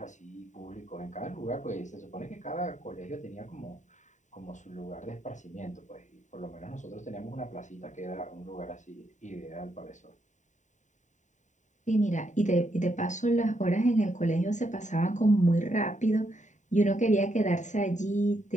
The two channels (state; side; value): late; right; 0.35 ms